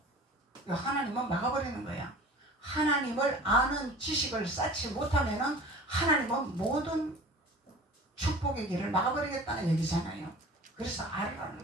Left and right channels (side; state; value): both; normal; correlation 0.42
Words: 하나님은 막아버리는 거야. 하나님을 아는 지식을 쌓지 못하면은 하나님은 모든 축복의 길을 막아버리겠다는 얘기잖아요. 그래서